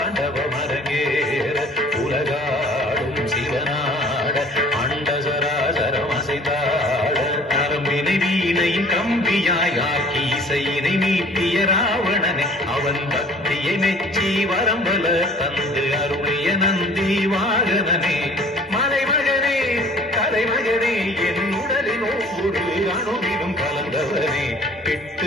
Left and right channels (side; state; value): both; normal; correlation 0.51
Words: அரங்கேற உலகாளும் சிவனாட அண்ட சராசரம் அசைந்தாட. நரம்பினை வீணையின் கம்பியாய் ஆக்கி இசையினை மீட்டிய ராவணனை அவன் பக்தியை மெச்சி வரம்பல தந்து அருளிய நந்தி வாகனனே. மலைமகனே கலைமகனே என் உடலின் ஒவ்வொரு அணுவிலும் கலந்தவனே.